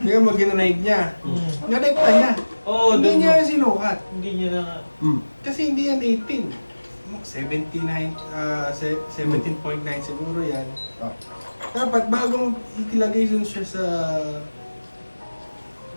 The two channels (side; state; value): both; inverted; correlation -1.00